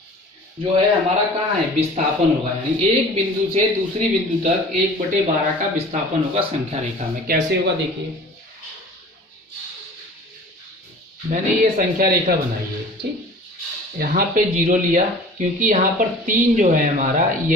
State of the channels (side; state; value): both; normal; correlation 0.44